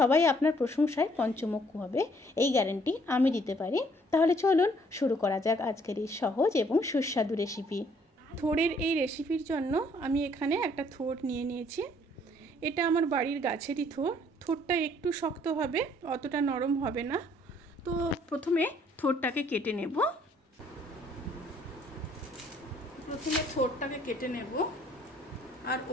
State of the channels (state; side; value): normal; both; correlation 0.63